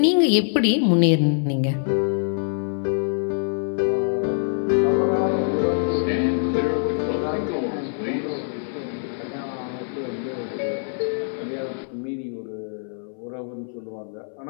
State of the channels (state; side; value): silent; right; 63 dB below the other